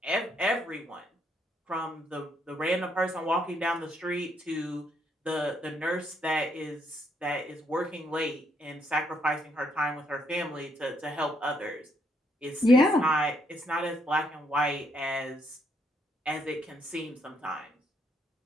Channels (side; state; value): both; normal; correlation 0.73